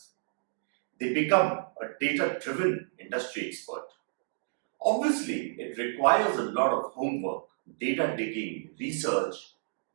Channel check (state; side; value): silent; left; digital silence